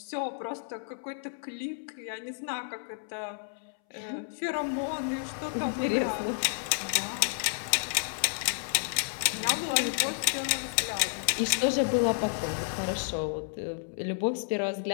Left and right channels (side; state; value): right; silent; 57 dB below the other